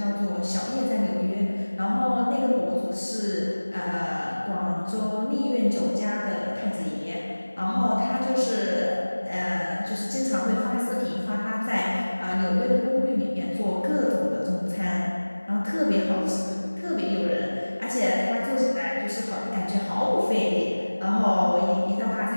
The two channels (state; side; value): inverted; both; correlation -1.00